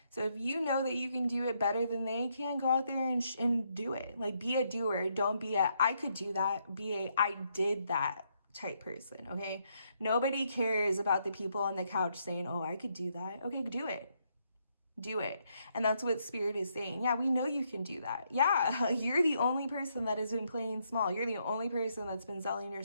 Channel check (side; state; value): both; inverted; correlation -0.76